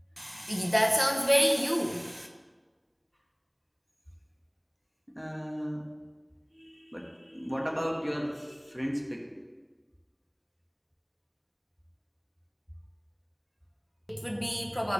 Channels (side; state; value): both; identical; correlation 1.00